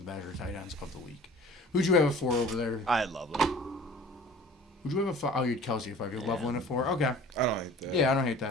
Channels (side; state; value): both; normal; correlation 0.46